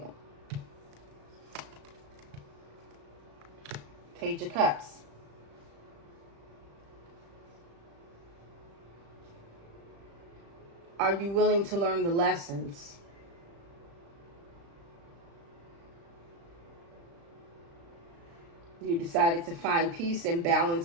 Page of Cups. Are you willing to learn the lessons? You decided to find peace and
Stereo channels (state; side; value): late; left; 35 ms